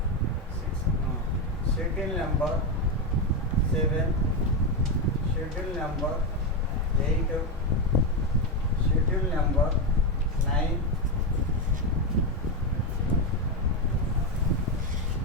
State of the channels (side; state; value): both; normal; correlation 0.09